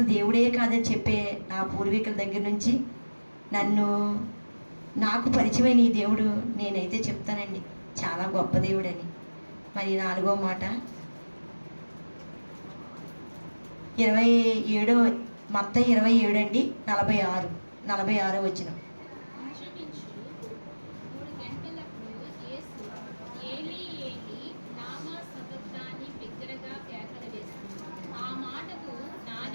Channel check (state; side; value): inverted; both; correlation -1.00